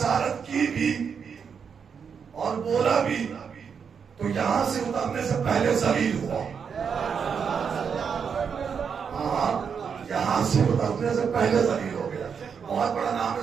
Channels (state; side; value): quieter; left; 6.6 dB